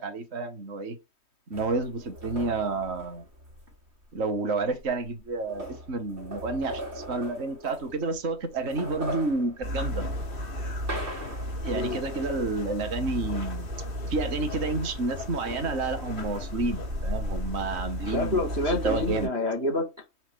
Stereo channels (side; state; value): left; late; 3.2 ms